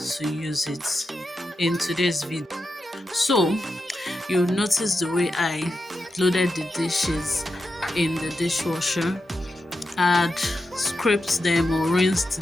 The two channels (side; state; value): both; normal; correlation 0.88